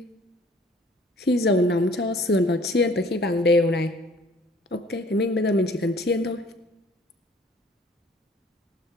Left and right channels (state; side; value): normal; both; correlation 0.53